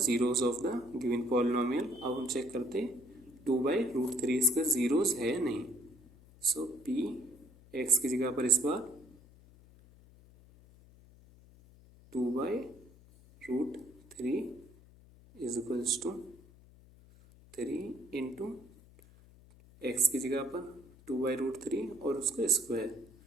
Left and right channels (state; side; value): noise; left; hum, 24 dB below the sound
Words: of the given polynomial. अब हम चेक करते हैं 2/√3 इसका जीरोस है या नहीं। सो P x की जगह पर इस बार 2/√3 is equals to 3 into x की जगह पर 2/√3 और उसका स्क्वायर,